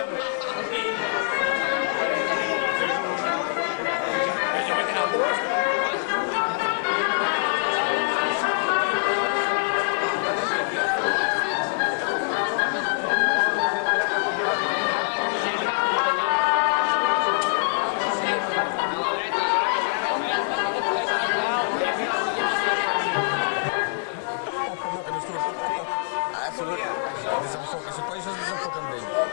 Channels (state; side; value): silent; right; digital silence